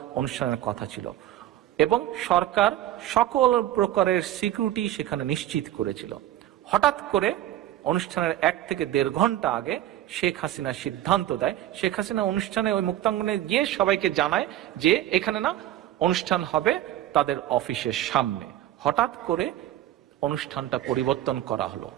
অনুষ্ঠানের কথা ছিল এবং সরকার সকল প্রকারের সিকিউরিটি সেখানে নিশ্চিত করেছিল। হঠাৎ করে অনুষ্ঠানের 1 থেকে 1.5 ঘন্টা আগে শেখ হাসিনা সিদ্ধান্ত দেয়। শেখ হাসিনা অনুষ্ঠানে ওই মুক্তাঙ্গনে গিয়ে সবাইকে জানায় যে এখানে না, অনুষ্ঠান হবে তাদের অফিসের সামনে। হঠাৎ করে অনুষ্ঠানটা পরিবর্তন করা হলো,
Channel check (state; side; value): quieter; left; 13.1 dB